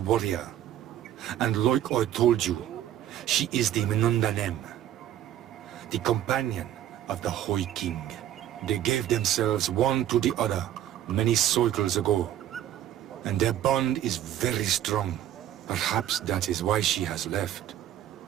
and like I told you, she is the Menundanem, the companion of the High King. They gave themselves one to the other many cycles ago, and their bond is very strong. Perhaps that is why she has left,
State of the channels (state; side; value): quieter; left; 11.7 dB